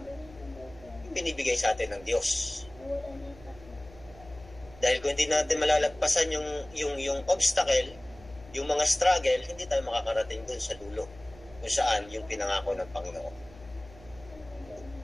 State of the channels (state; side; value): noise; left; hum, 21 dB below the sound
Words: yung binibigay sa atin ng Diyos. Dahil kung hindi natin malalagpasan yung obstacle, yung mga struggle, hindi tayo makakarating dun sa dulo kung saan yung pinangako ng Panginoon.